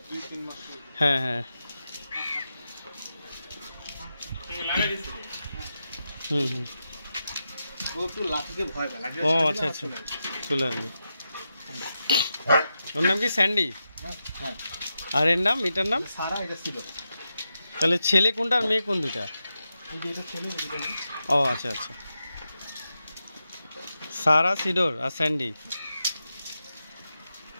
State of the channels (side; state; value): both; inverted; correlation -0.89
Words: হ্যাঁ হ্যাঁ ও আচ্ছা আচ্ছা চলে আসবে। ওর নাম কি স্যান্ডি? আর এর নাম, এটার নাম সারা, এটা সিডর। তাহলে ছেলে কোনটা আর মেয়ে কোন দুটা? ও আচ্ছা আচ্ছা, সারা, সিডর আর স্যান্ডি।